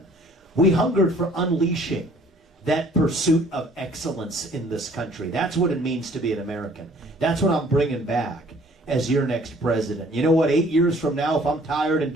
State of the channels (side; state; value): both; normal; correlation 0.56